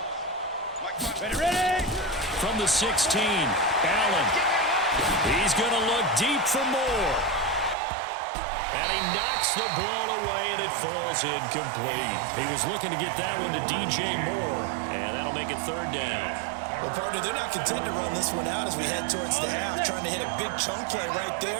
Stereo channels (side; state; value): left; drops out; at 7.8 s